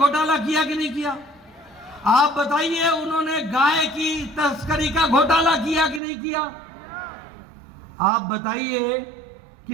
किया कि नहीं किया? आप बताइए उन्होंने गाय की तस्करी का घोटाला किया कि नहीं किया? आप बताइए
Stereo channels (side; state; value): left; drops out; at 6.0 s